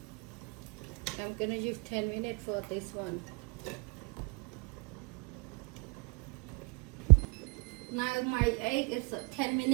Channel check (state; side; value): quieter; left; 30.3 dB